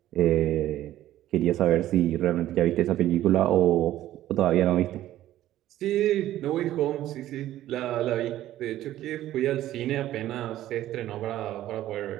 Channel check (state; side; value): quieter; left; 13.6 dB